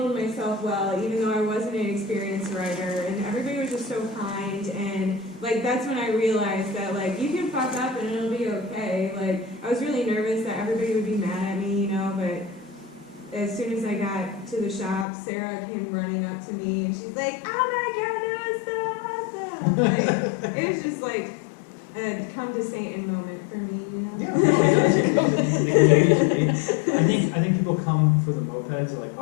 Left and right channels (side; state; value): right; drops out; at 15.1 s